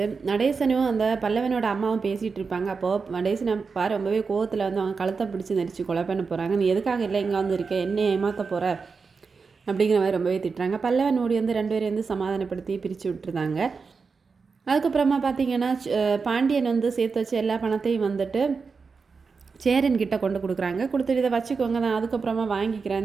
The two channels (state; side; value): quieter; left; 5.0 dB